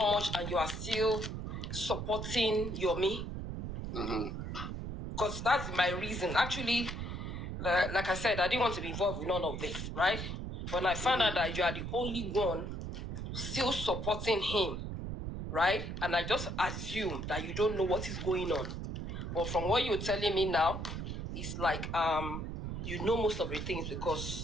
and you are still supporting Yomi. Because that's my reason. Actually, like I said, I didn't want to be involved with none of this, right? When I found out that you are the only one still supporting him, right? And I just assumed that you don't know what is going on. But from what you're telling me now, it's like you know most of the things because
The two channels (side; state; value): right; noise; rumble, 5 dB below the sound